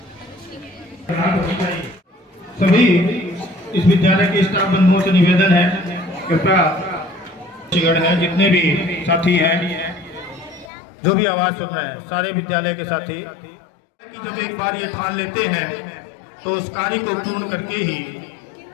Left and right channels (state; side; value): drops out; right; at 10.7 s